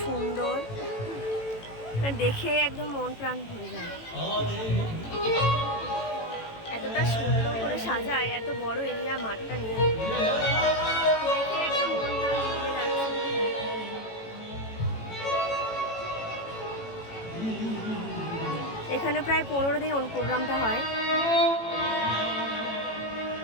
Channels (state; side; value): late; right; 18 ms